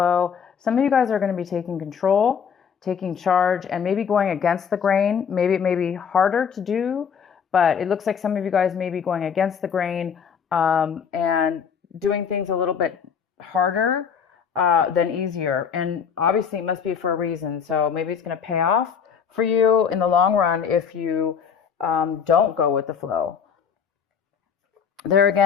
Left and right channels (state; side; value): quieter; right; 7.0 dB